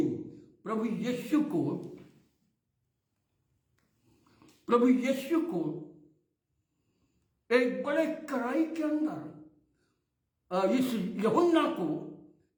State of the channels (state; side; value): identical; both; correlation 1.00